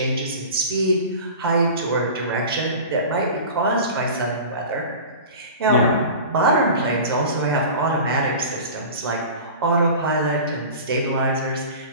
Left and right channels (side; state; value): both; inverted; correlation -0.36